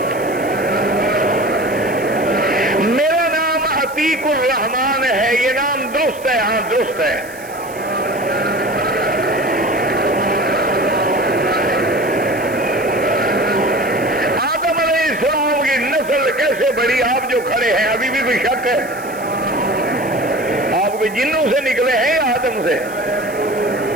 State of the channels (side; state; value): right; noise; hiss, 19 dB below the sound